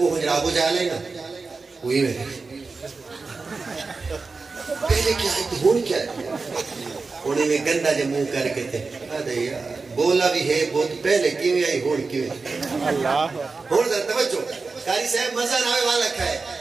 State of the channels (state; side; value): quieter; left; 4.2 dB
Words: حجر ابو جہل ہے نا وہی میرے پہلے کیا ہے تے ہون کیا ہے انہیں میں گندہ جے منہ کر کے تھے آدھے یار بولا بھی ہے بہت پہلے کیویں آئی ہون کیویں اللہ ہون ذرا توجہ قاری صاحب مزہ ناوے والا کھائے.